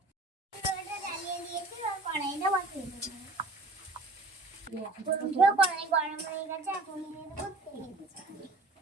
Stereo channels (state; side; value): quieter; left; 3.1 dB